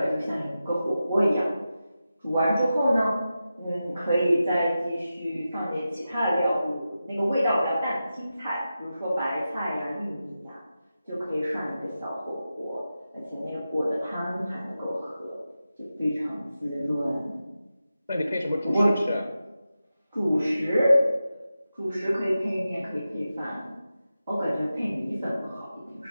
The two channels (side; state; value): both; inverted; correlation -0.92